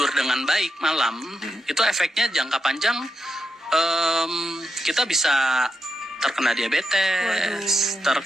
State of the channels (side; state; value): both; normal; correlation 0.85